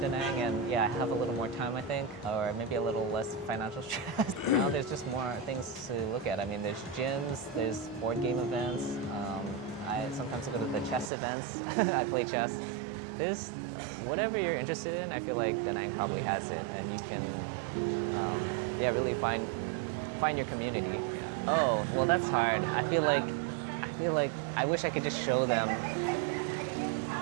Nang and I have a little more time, I think, or maybe a little less financial stress. Now there's just more things to look at. I mean, there's gyms, there's board game events. I sometimes go to the chess events. I play chess. There's whatever you're interested in. I feel like Da Nang probably has it, and you can really find your community. Oh, well, that's hard. I feel like I wish I could just show them.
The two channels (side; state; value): left; drops out; at 11.1 s